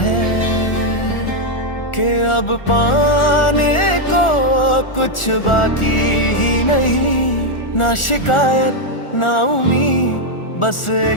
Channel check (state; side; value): late; right; 1.4 ms